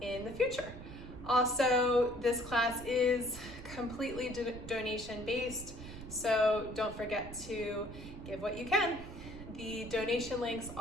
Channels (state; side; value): noise; right; rumble, 13 dB below the sound